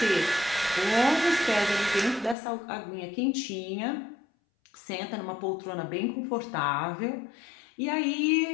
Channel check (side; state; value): right; drops out; at 2.4 s